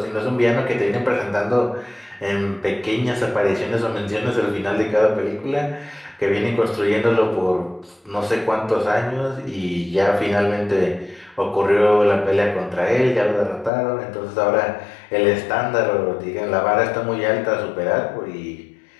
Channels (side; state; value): right; drops out; at 13.7 s